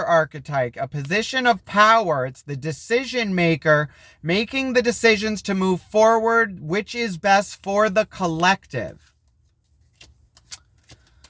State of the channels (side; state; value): both; identical; correlation 1.00